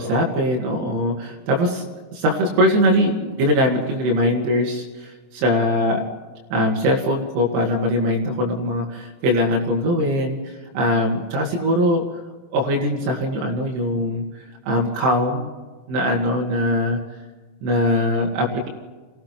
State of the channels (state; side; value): late; left; 24 ms